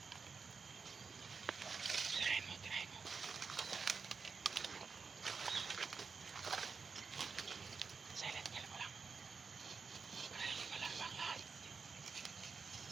Tirahin mo, tirahin mo. Silent kill mo lang. Para hindi malamba ang lahat.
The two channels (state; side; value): quieter; left; 5.2 dB